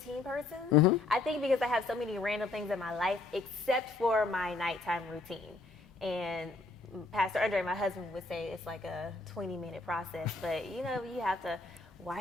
person. I think because I have so many random things in my life, except for my nighttime routine. And Pastor Andre, my husband, would say it's like a 20-minute process. But, you have to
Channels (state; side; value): quieter; right; 3.4 dB